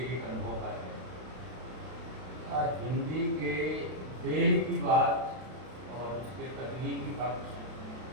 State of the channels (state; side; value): late; left; 32 ms